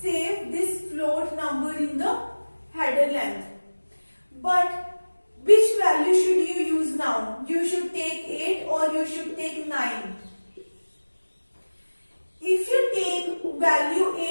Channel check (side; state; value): both; inverted; correlation -1.00